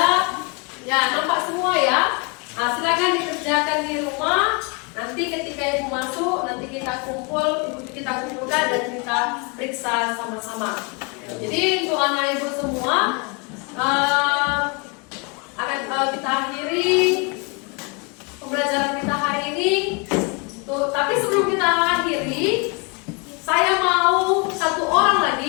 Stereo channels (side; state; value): right; quieter; 31.3 dB